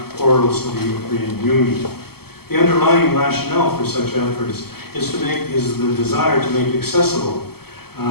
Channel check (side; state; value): right; late; 0.96 ms